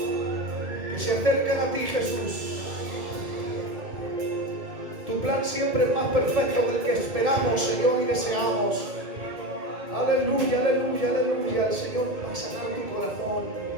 que se acerquen a ti, Jesús. Tu plan siempre es más perfecto del que esperamos, Señor, y deseamos. Aleluya, aleluya, aleluya. El Señor va a sanar tu corazón.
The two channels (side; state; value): left; late; 1.7 ms